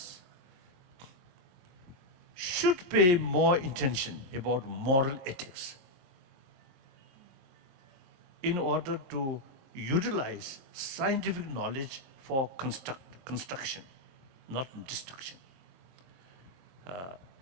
should pay more attention about moral ethics in order to utilize scientific knowledge for construction, not destruction.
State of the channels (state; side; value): late; left; 22 ms